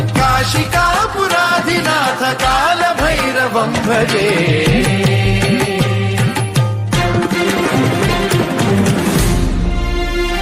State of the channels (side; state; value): both; identical; correlation 1.00